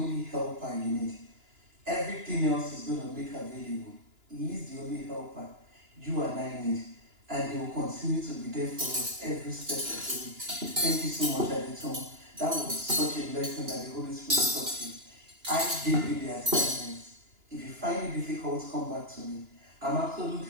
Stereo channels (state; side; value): late; left; 2.9 ms